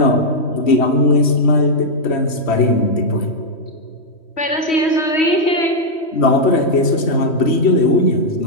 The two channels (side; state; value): right; late; 3.1 ms